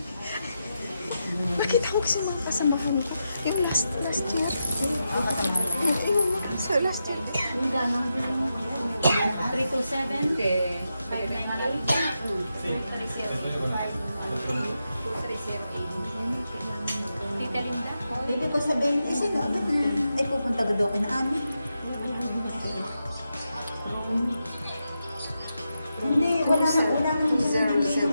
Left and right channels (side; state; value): both; inverted; correlation -0.87